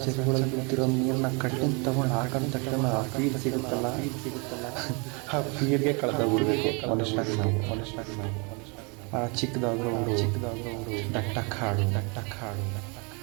ಚೆರೆಗಳಲ್ಲಿ ಬಿದ್ದಿರೋ ನೀರನ್ನ ಕಣ್ಣಿಂದ ತಗೊಂಡು ಹಾಕೊಂಡು ತಕ್ಷಣ ಆ ಫೀಲ್ ಸಿಗುತ್ತಲ್ಲ, ಆ ಫೀಲ್ಗೆ ಕಳೆದೋಗ್ಬಿಡ್ಬೇಕು ಮನುಷ್ಯನಾಗಿ ನಾವು. ಆ ಚಿಕ್ಕದಾದ್ರೂ ದಟ್ಟ ಕಾಡು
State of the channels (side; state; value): left; quieter; 32.3 dB